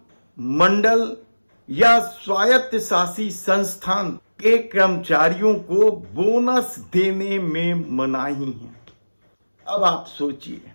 मंडल या स्वायत्त शासी संस्थान के कर्मचारियों को बोनस देने में मनाही है। अब आप सोचिए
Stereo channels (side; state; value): both; inverted; correlation -1.00